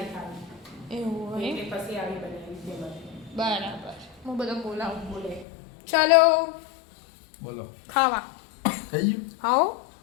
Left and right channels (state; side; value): drops out; right; at 5.5 s